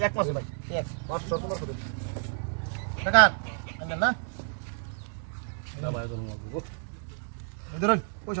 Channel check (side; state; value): left; silent; 58 dB below the other